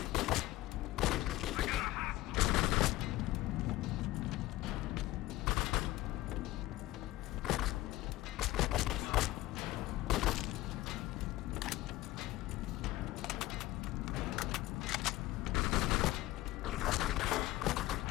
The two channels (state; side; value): quieter; right; 17.2 dB